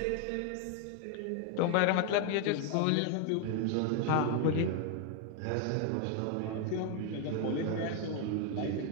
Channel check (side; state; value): both; different; correlation 0.01